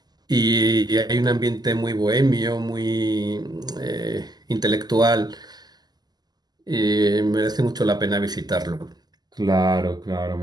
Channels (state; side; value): late; left; 0.20 ms